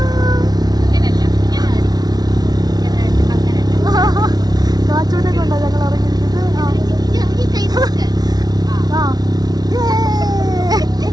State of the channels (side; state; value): left; late; 0.19 ms